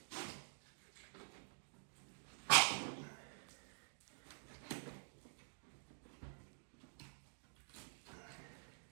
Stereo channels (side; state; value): left; silent; digital silence